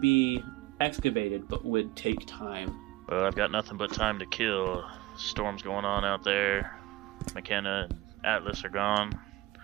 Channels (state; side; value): quieter; left; 17.7 dB